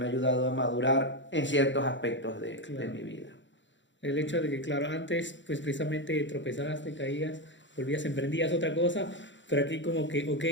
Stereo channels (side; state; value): right; late; 0.54 ms